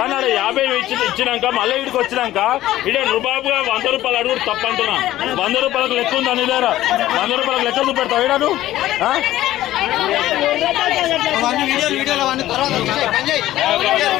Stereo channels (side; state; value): right; quieter; 14.6 dB